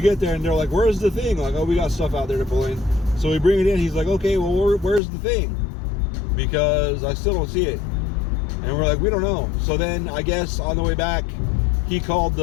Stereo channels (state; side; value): drops out; right; at 5.0 s